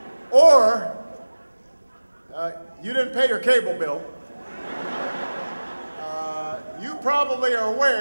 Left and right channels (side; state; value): both; inverted; correlation -1.00